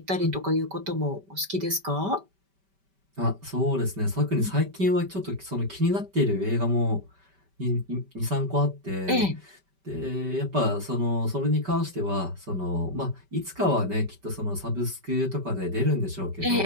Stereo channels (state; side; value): late; left; 5.1 ms